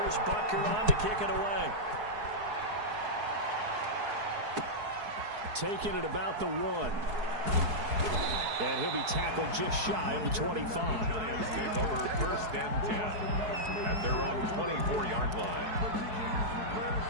Butker on to kick it away. Taking it about the 1. And he'll be tackled just shy of the 25. Giants take over first and 10 at their own 24-yard line.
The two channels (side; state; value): left; late; 4.7 ms